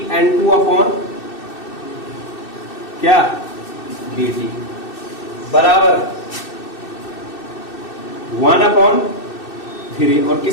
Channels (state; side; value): late; right; 2.6 ms